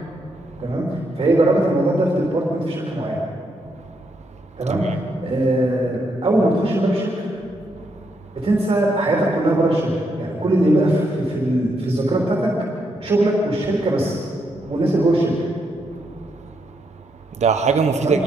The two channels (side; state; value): both; normal; correlation 0.78